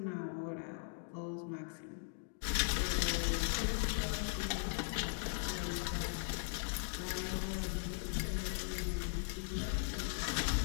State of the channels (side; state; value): right; silent; digital silence